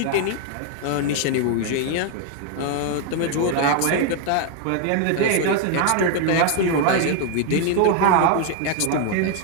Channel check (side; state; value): both; different; correlation 0.00